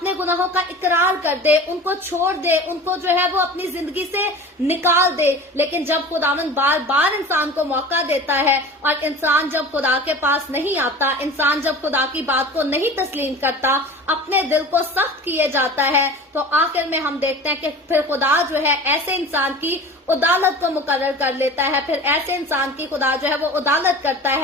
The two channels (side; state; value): both; normal; correlation 0.37